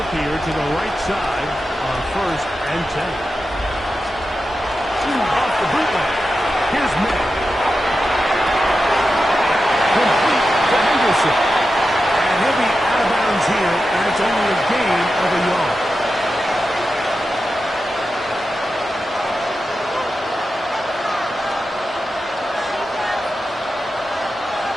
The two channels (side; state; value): both; normal; correlation 0.91